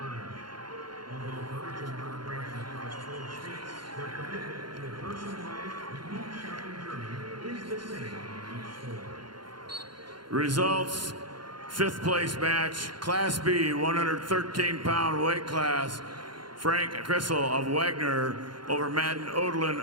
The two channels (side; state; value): left; late; 0.72 ms